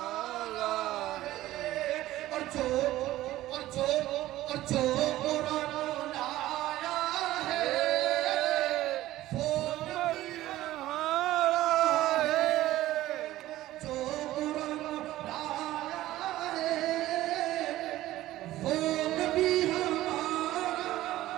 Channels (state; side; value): quieter; left; 15.4 dB